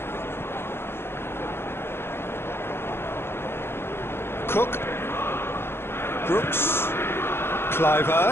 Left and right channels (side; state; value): right; late; 0.11 ms